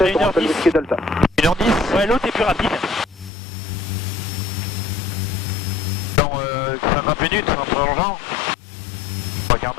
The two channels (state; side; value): drops out; right; at 3.3 s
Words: 1h10. Delta. 1h10. Ouais, l'autre est plus rapide. Dans 50 minutes, en prolongeant. 3 quarts